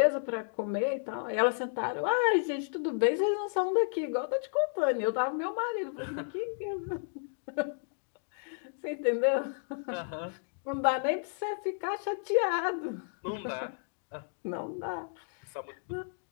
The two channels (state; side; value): silent; right; digital silence